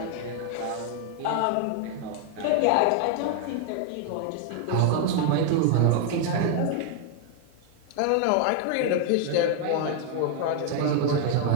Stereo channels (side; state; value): both; different; correlation 0.00